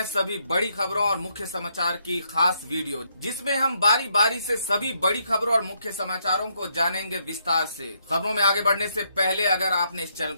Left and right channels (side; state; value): both; inverted; correlation -0.75